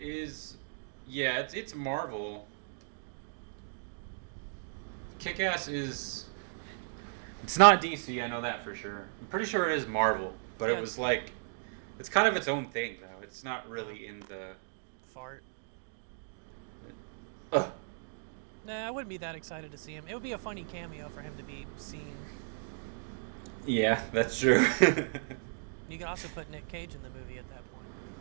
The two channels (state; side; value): silent; left; digital silence